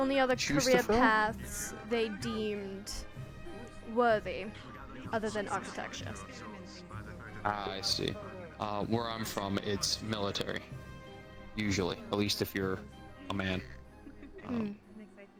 other choose to career fill? paths they deemed worthy other than architecture. Ah, I see. Where I'm from, it's military. Usually. At least if you're a man.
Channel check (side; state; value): both; identical; correlation 1.00